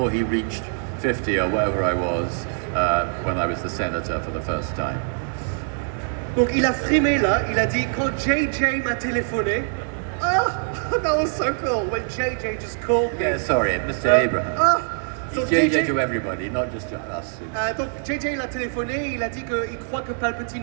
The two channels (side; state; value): left; silent; 62 dB below the other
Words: he reached 50 or whatever I was when I was the senator for the first time. Donc il a frimé là, il a dit quand JJ m'a téléphoné. Oh, that was so cool when JJ just called me. Yeah, sorry, Mr. Abraham. He's So JJ to everybody, not just to us. Donc JJ l'a téléphoné, il a dit qu'il croit que Palpatine